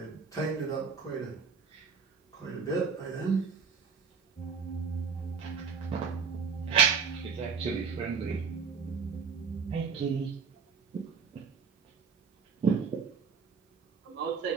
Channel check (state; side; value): quieter; left; 5.6 dB